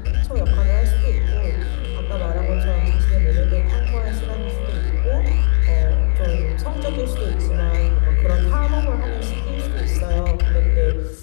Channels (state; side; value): silent; right; 68 dB below the other